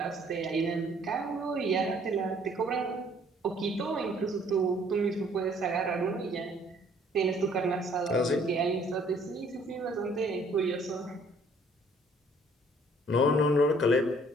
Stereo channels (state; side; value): normal; both; correlation 0.60